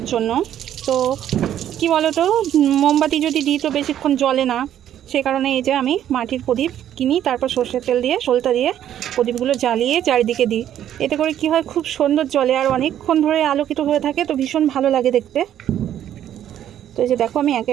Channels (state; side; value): quieter; left; 10.9 dB